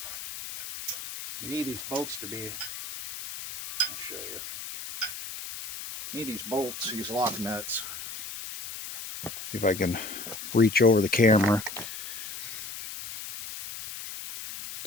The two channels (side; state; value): left; noise; hiss, 9 dB below the sound